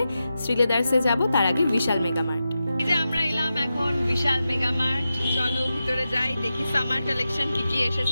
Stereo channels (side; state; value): both; inverted; correlation -0.91